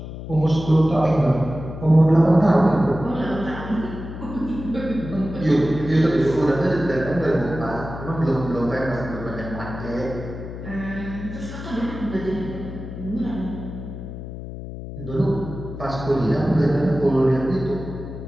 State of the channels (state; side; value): noise; left; hum, 10 dB below the sound